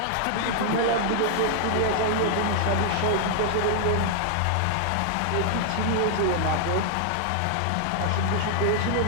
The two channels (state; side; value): different; both; correlation -0.01